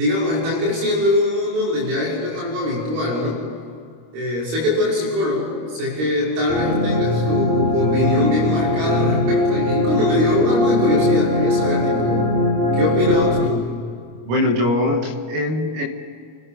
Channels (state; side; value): late; left; 26 ms